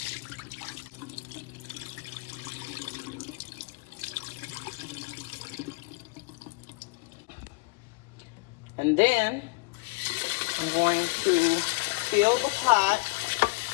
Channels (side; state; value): right; quieter; 29.9 dB